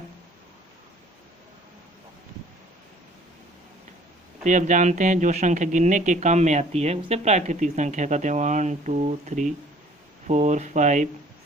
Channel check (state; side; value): normal; both; correlation 0.54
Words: तो अब जानते हैं जो संख्या गिनने के काम में आती है उसे प्राकृतिक संख्या कहते हैं। 1 2 3 4 5